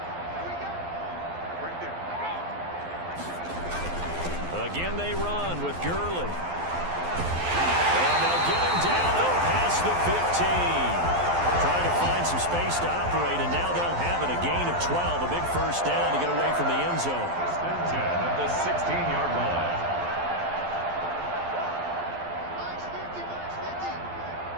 Again they run with Gurley. And they'll get him down out past the 15. Trying to find some space to operate, and now they'll have it. A gain of 12, a big first down to get away from the end zone. 10 at the 16-yard line.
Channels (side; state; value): left; late; 12 ms